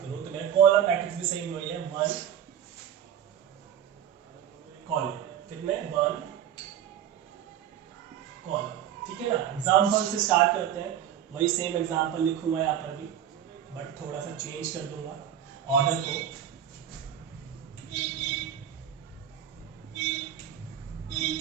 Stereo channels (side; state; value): left; quieter; 9.9 dB